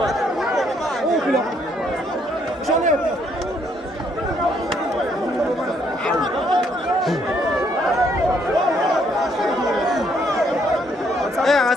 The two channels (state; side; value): normal; both; correlation 0.70